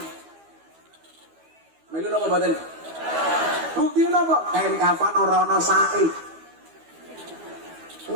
Melu napa badan? Bukti napa? Kain kafan ora ana sae.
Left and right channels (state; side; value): late; left; 12 ms